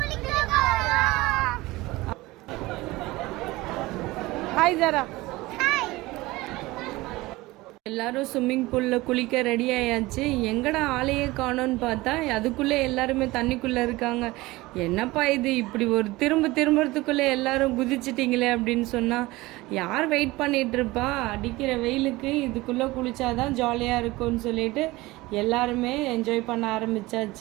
ஹாய் ஜாரா. எல்லாரும் ஸ்விம்மிங் பூலில் குளிக்க ரெடி ஆயாச்சு. எங்கடா ஆளையே காணோன்னு பார்த்தா அதுக்குள்ளே எல்லாருமே தண்ணிக்குள்ளே இருக்காங்க. என்னப்பா இது, இப்படி ஒரு திரும்புறதுக்குள்ளே எல்லாரும் குதிச்சிட்டிங்களே அப்படின்னு சொன்னால் யார் வெயிட் பண்ணிகிட்ருப்பா? அடிக்கிற வெயிலுக்கு இதுக்குள்ளே குளிச்சாதான் ஜாலியாக இருக்கும்னு சொல்லிட்டு எல்லாருமே என்ஜாய் பண்ண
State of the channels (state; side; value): quieter; left; 20.2 dB